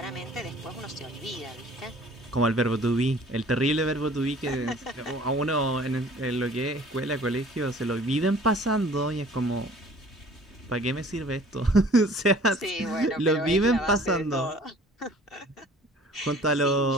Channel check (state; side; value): normal; both; correlation 0.50